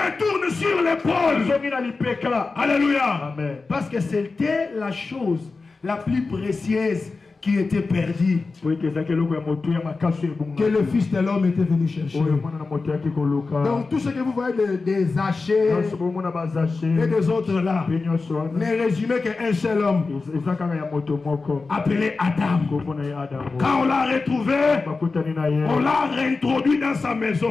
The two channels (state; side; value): quieter; right; 4.0 dB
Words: retourne sur l'épaule. Alléluia. Amen. Parce que c'était la chose la plus précieuse qui était perdue, que le Fils de l'homme était venu chercher. Donc tout ce que vous voyez des hachés et des autres là n'est résumé qu'un seul homme appelé Adam. Quand on l'a retrouvé, on l'a réintroduit dans sa